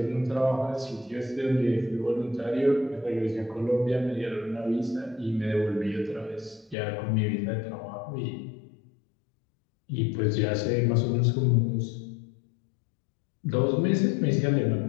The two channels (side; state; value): right; drops out; at 6.8 s